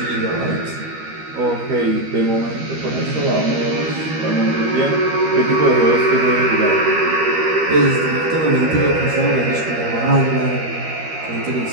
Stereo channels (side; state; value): left; late; 13 ms